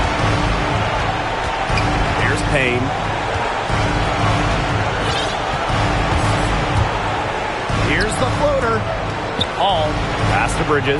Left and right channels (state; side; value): identical; both; correlation 1.00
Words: Here's Payne. Here's the floater. Hall. Pass to